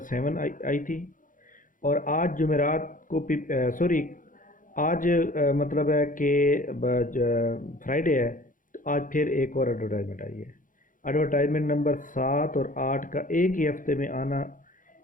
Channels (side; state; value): right; late; 0.39 ms